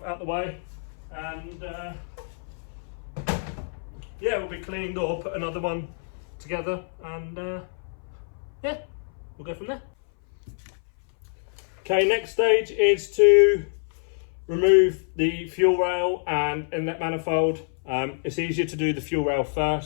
out the way, and yeah, we'll be cleaned or put another one together, and yeah, we'll go from there. Okay, next stage is to remove the fuel rail and inlet manifold. It's easier to do the fuel rail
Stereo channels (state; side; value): silent; right; 59 dB below the other